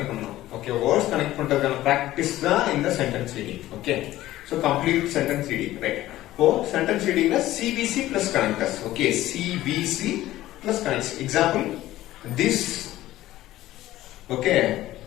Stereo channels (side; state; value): right; quieter; 15.3 dB